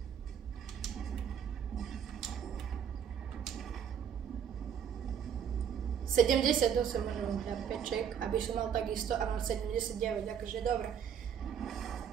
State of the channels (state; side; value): quieter; left; 8.2 dB